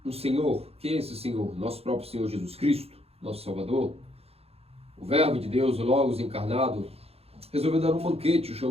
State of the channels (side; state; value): left; late; 0.29 ms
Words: o Senhor, quem é esse Senhor? Nosso próprio Senhor Jesus Cristo, nosso Salvador, o Verbo de Deus, o Logos encarnado, resolveu dar um banquete e